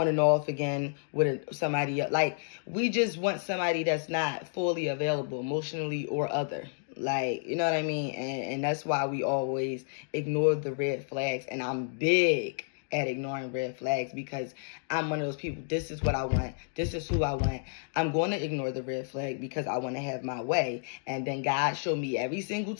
and off again with somebody else. Like, we just want somebody that's not fully available emotionally or other. Like, you know what I mean? And that's why we always ignore the red flags. And I'm big at ignoring red flags because I'm one of those people. This is what I want. This is who I want. I'm going to ignore the red flag because I want to have my way. And then God showed me every single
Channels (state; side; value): silent; right; digital silence